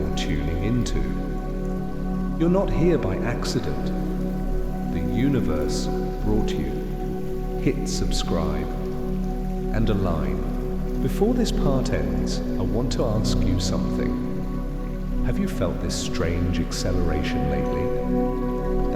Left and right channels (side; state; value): both; identical; correlation 1.00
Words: tuning into. You're not here by accident. universe brought you. Hit subscribe and align. Before this part ends, I want to ask you something. Have you felt this strange acceleration lately?